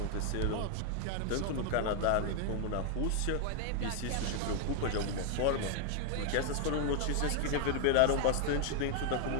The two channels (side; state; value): both; different; correlation 0.00